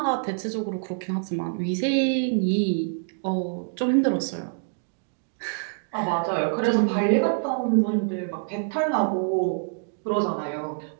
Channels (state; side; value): silent; left; digital silence